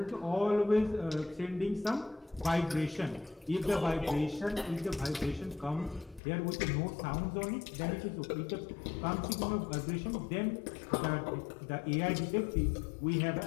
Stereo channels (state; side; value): drops out; right; at 6.2 s